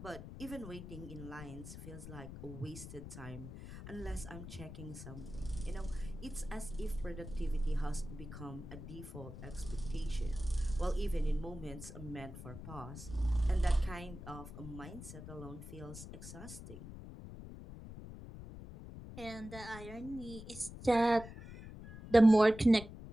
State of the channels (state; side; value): noise; left; rumble, 12 dB below the sound